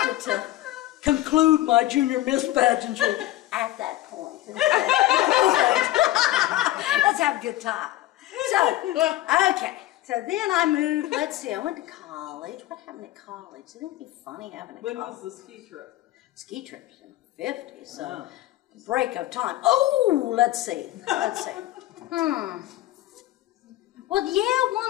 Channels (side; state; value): right; quieter; 15.6 dB